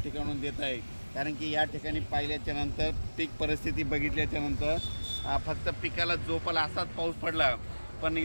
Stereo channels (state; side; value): inverted; both; correlation -1.00